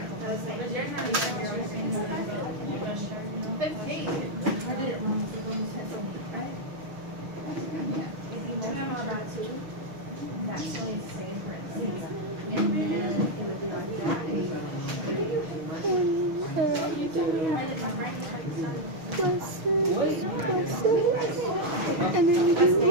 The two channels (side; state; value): left; late; 6.2 ms